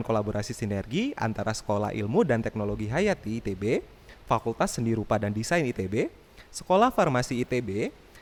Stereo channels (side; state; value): both; identical; correlation 1.00